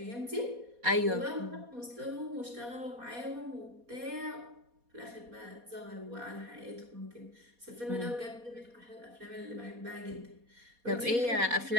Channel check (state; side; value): late; left; 4.2 ms